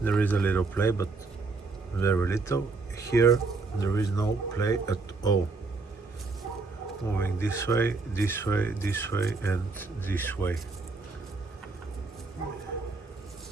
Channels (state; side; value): quieter; left; 3.9 dB